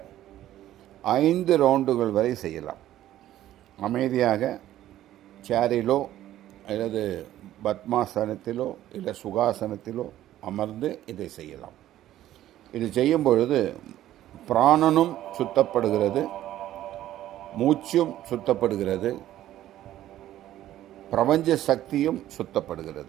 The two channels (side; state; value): left; quieter; 13.2 dB